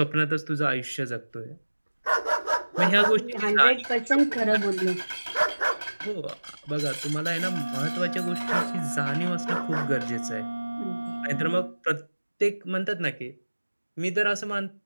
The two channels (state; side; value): inverted; both; correlation -1.00